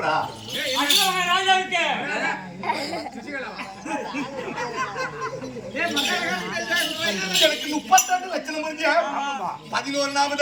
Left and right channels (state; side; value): identical; both; correlation 1.00